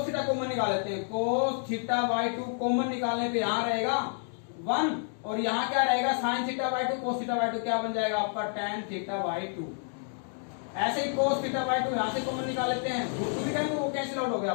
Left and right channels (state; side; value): silent; right; 56 dB below the other